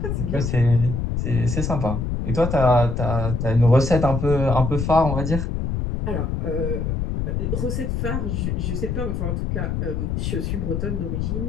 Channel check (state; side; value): noise; left; rumble, 1 dB below the sound